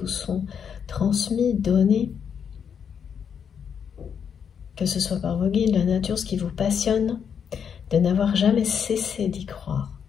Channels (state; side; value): quieter; right; 7.4 dB